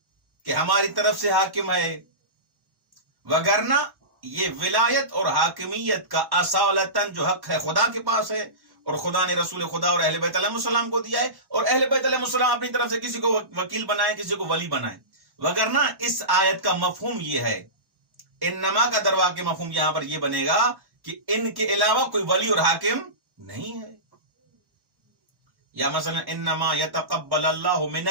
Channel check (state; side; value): late; left; 1.1 ms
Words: کہ ہماری طرف سے حاکم ہے، وگرنہ یہ ولایت اور حاکمیت کا اصالتاً جو حق ہے خدا کے پاس ہے، اور خدا نے رسول خدا اور اہل بیت علیہ السلام کو دیا ہے، اور اہل بیت علیہ السلام اپنی طرف سے کسی کو وکیل بنائے، کسی کو ولی بنائے. وگرنہ اس آیت کا مفہوم یہ ہے، انما کا دروا کے مفہوم یہاں پر یہ بنے گا کہ ان کے علاوہ کوئی ولی اور حاکم نہیں ہے. یا مثلا انما یتقبل اللہ من